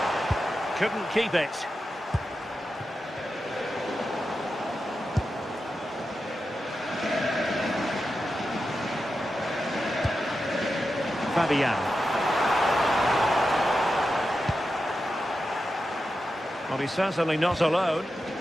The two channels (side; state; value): both; normal; correlation 0.90